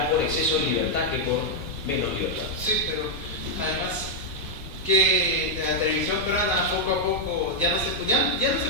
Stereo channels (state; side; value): noise; right; rumble, 15 dB below the sound